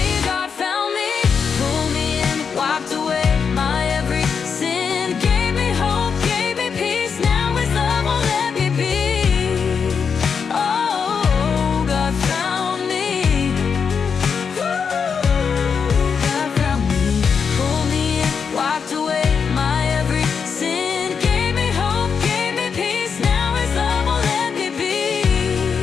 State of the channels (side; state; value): right; quieter; 6.2 dB